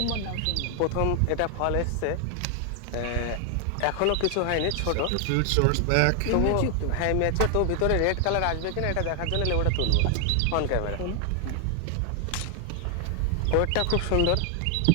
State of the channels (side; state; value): both; different; correlation 0.00